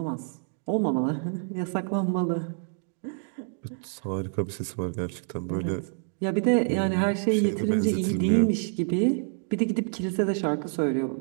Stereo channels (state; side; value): silent; left; 60 dB below the other